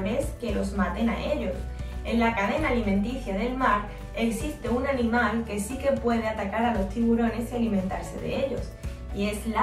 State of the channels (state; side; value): identical; both; correlation 1.00